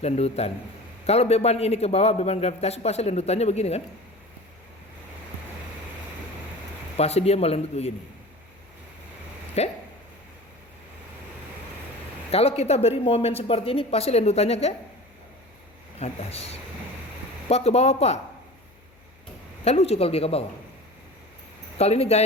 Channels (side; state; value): left; noise; hum, 29 dB below the sound